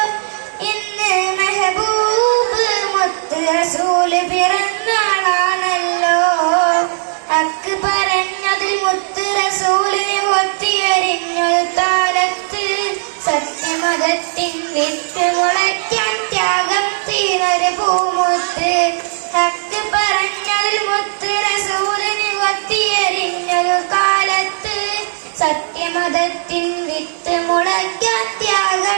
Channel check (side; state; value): left; silent; digital silence